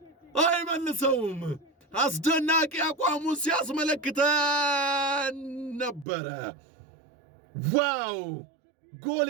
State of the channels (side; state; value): left; drops out; at 6.1 s